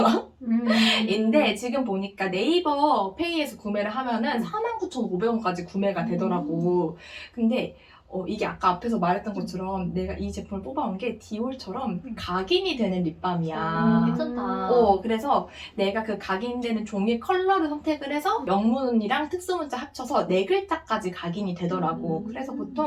지금 보니까 네이버 페이에서 구매를 하면은 49,500원까지 구매가 되더라고. 근데 이게 아까 앞에서 말했던 것처럼 내가 이 제품을 뽑아온 게 디올처럼 각인이 되는 립밤이야. 괜찮다. 그래서 내가 그 각인되는 종이 컬러를 선택을 해서 명문이랑 특수문자 합쳐서 4글자까지 각인이 되더라고. 그래서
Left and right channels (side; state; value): both; identical; correlation 1.00